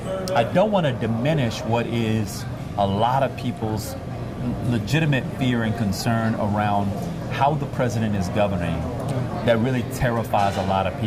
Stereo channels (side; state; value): both; identical; correlation 1.00